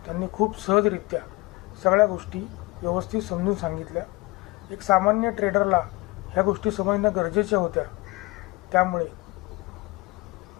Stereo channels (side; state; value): right; quieter; 22.5 dB